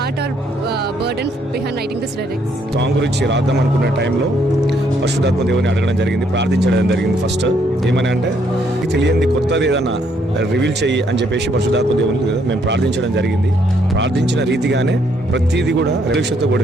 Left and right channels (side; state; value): both; normal; correlation 0.70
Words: or burden behind writing this lyrics? Song గురించి రాద్దాం అనుకున్న టైంలో పరిశుద్ధాత్మ దేవుని అడగడం జరిగింది, ప్రార్థించడం జరిగింది. ఫస్ట్ ఏమని అంటే తెలియంది కొత్తది ఏదన్నా రివీల్ చెయ్యి అని చెప్పేసి పరిశుద్ధాత్మ దేవుని మేము ప్రార్థించడం జరిగింది. ప్రార్థించిన రీతిగానే ప్రతిదీ కూడా రిలీక్షతో